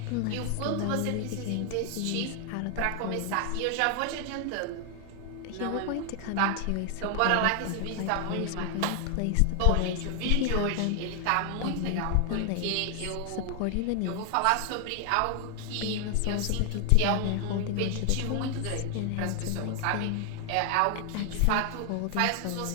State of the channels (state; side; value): different; both; correlation 0.00